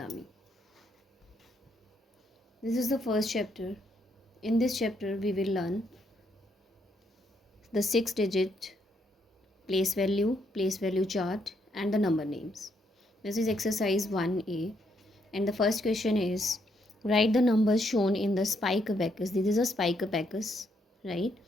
This is the first chapter. In this chapter we will learn the 6-digit place value chart and the number names. This is exercise 1A and the first question is write the numbers shown in the spike abacus. This is a spike abacus, right?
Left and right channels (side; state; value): both; normal; correlation 0.74